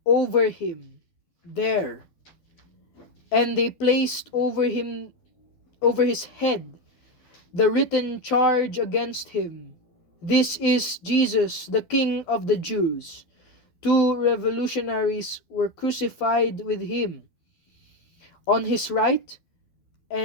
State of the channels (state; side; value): late; right; 12 ms